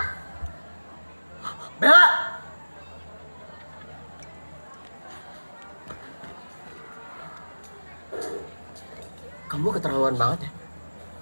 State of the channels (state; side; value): inverted; both; correlation -1.00